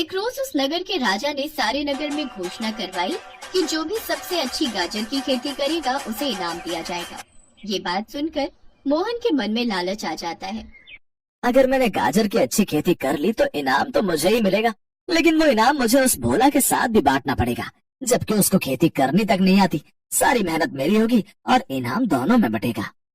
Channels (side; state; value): both; identical; correlation 1.00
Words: रोज उस नगर के राजा ने सारे नगर में घोषणा करवाई कि जो भी सबसे अच्छी गाजर की खेती करेगा उसे इनाम दिया जाएगा। ये बात सुनकर मोहन के मन में लालच आ जाता है। अगर मैंने गाजर की अच्छी खेती कर ली तो इनाम तो मुझे ही मिलेगा, लेकिन वो इनाम मुझे उस भोला के साथ भी बांटना पड़ेगा, जबकि उसको खेती करनी तक नहीं आती। सारी मेहनत मेरी होगी और इनाम दोनों में बटेगा।